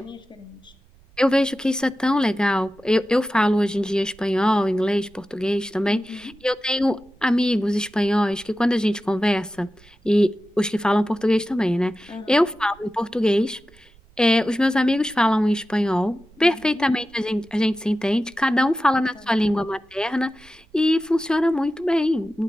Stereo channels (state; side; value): noise; right; rumble, 28 dB below the sound